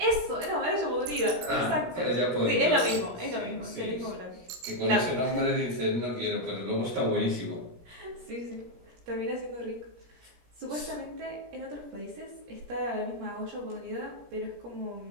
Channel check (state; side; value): late; left; 17 ms